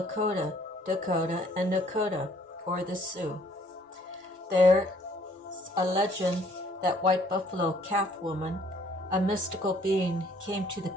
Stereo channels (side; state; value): both; normal; correlation 0.61